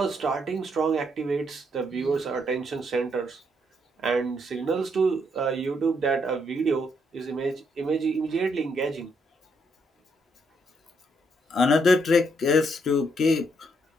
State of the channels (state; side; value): normal; both; correlation 0.74